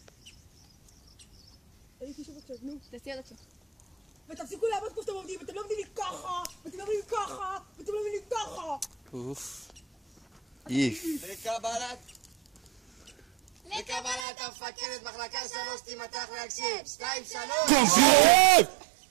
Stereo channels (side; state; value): left; drops out; at 14.2 s